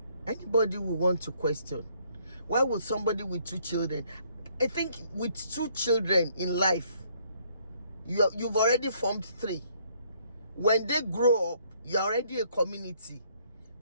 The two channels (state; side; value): inverted; both; correlation -0.66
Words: Anybody will want to question, why would somebody with 2 children, I think with 2 children in life, you've already formed 3. When they grow up, you're already a community.